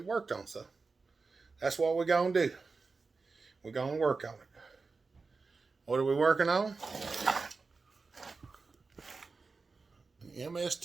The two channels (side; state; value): left; quieter; 4.3 dB